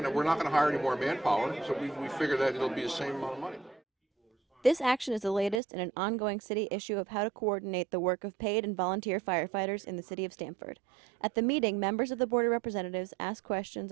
to hire any more manpower, so we figure that it'll be the same amount of money. This action is the latest in an ongoing city issue of how to coordinate the work of paid and volunteer firefighters in the city of Stamford. At the meeting, members of the Board of Representatives asked questions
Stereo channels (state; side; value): drops out; left; at 5.6 s